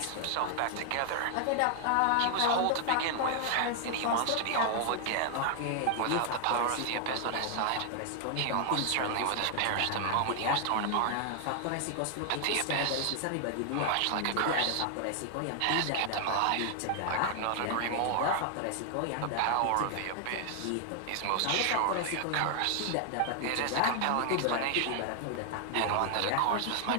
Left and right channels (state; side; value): different; both; correlation 0.00